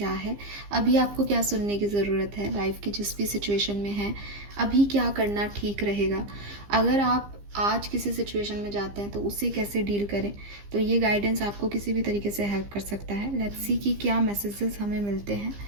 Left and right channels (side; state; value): left; late; 15 ms